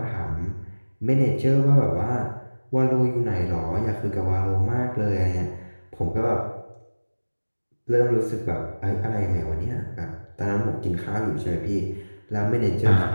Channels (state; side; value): inverted; both; correlation -1.00